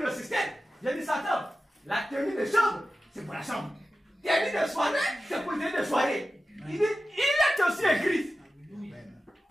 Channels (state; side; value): normal; both; correlation 0.94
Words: le système. J'ai dit, Satan, la tenue de chambre, c'est pour la chambre. Tenue de soirée, c'est pour la tenue de soirée. Il dit, il est aussi écrit.